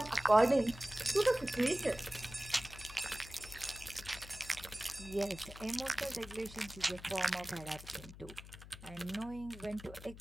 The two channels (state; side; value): noise; left; hum, 15 dB below the sound